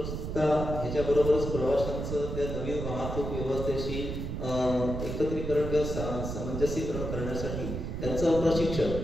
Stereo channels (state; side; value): noise; right; rumble, 4 dB below the sound